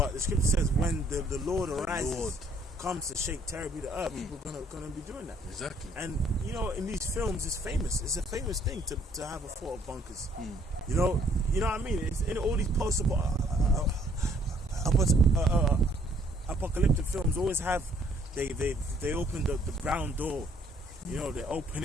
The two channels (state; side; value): normal; both; correlation 0.63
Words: the scripture says when the Lord arises, comes to shake terribly the earth, people are gonna be doing that. Exactly. And you know, in these films, it's famous. It's a famous thing to have a thought of bunkers. You know what I mean? It's in all these apocalyptic films always have they open the ground door. You know, they open